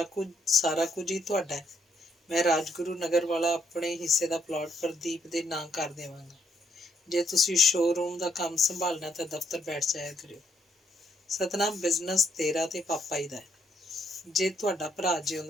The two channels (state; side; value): normal; both; correlation 0.72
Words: ਕੁਝ ਹੀ ਤੁਹਾਡਾ ਹੈ। ਮੈਂ ਰਾਜਗੁਰੂ ਨਗਰ ਵਾਲਾ ਆਪਣੇ ਹਿੱਸੇ ਦਾ ਪਲਾਟ ਪ੍ਰਦੀਪ ਦੇ ਨਾਂ ਕਰ ਦੇਵਾਂਗਾ। ਜੇ ਤੁਸੀਂ ਸ਼ੋਰੂਮ ਦਾ ਕੰਮ ਸੰਭਾਲਣਾ ਤਾਂ ਦਫ਼ਤਰ ਬੈਠ ਜਾਇਆ ਕਰਿਓ। ਸਤਨਾਮ, ਬਿਜ਼ਨਸ ਤੇਰਾ ਤੇ ਪਾਪਾ ਜੀ ਦਾ ਹੈ। ਜੇ ਤੁਹਾਡਾ ਭਰਾ